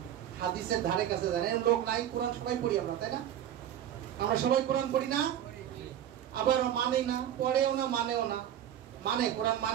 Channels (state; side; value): quieter; left; 10.9 dB